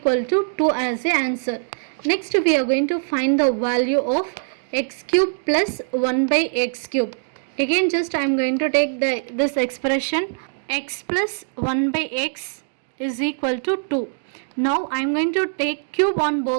to 2 as the answer. Next we are going to find the value of x cube plus 1 by x cube. Again just I am going to take this expression x plus 1 by x is equal to 2. Now I am going to take cube on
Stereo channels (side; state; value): left; silent; digital silence